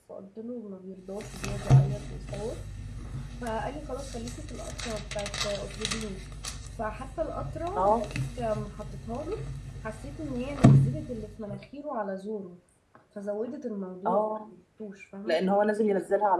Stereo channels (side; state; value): both; identical; correlation 1.00